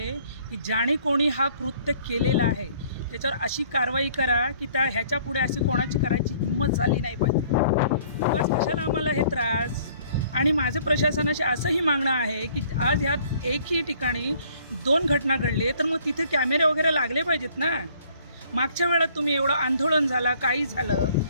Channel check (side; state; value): both; inverted; correlation -0.58